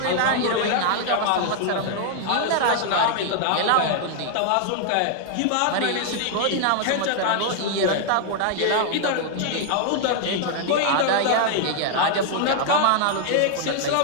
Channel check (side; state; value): both; different; correlation 0.00